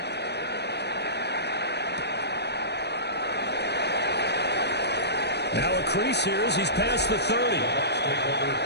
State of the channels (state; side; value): late; right; 0.49 ms